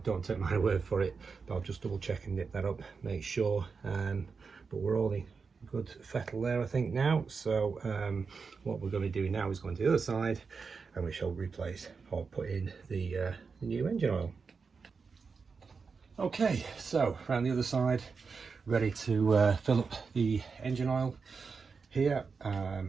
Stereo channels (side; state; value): left; quieter; 5.1 dB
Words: don't take my word for it, but I'll just double check and nip that up, make sure. But we're all in good fettle there, I think, now. So what we're going to be doing now is going to the other side, and we shall replace or put in the new engine oil. Okay, so around the other side, ready to fill up the engine oil here.